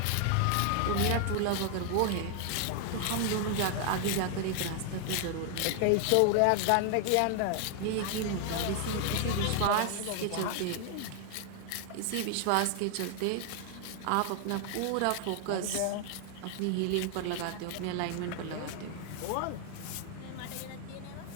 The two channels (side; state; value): both; different; correlation 0.00